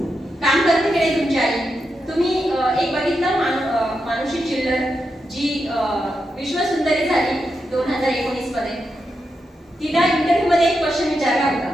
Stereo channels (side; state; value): both; normal; correlation 0.86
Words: काम करते की नाही तुमची आई? तुम्ही एक बघितलं मानुषी चिल्लर, जी विश्वसुंदरी झाली 2019 मध्ये. तिला इंटरव्ह्यू मध्ये एक क्वेश्चन विचारला